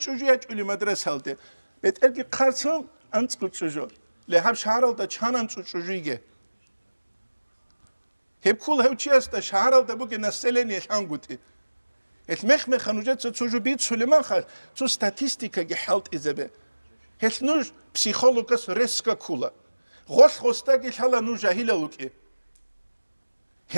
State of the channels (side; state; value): both; inverted; correlation -1.00